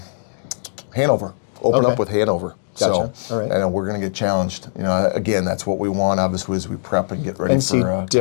Hanover. Open up with Hanover. Gotcha. So, All right. and we're going to get challenged. Again, that's what we want, obviously, as we prep and get ready And see for different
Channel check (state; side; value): silent; right; digital silence